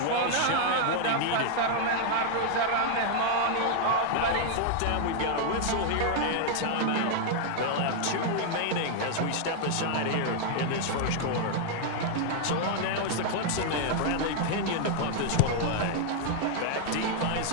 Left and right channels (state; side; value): different; both; correlation 0.00